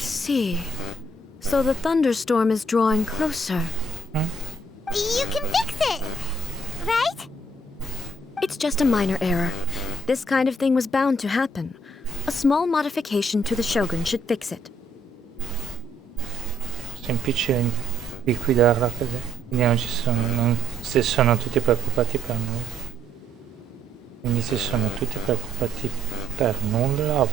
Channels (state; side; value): normal; both; correlation 0.68